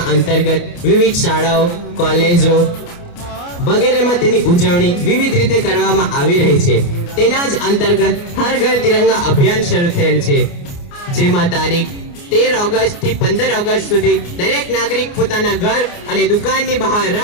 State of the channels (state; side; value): late; right; 29 ms